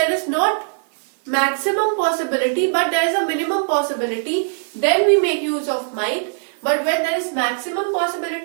is not maximum possibility but there is a minimum possibility, then we make use of might. But when there is maximum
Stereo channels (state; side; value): silent; left; digital silence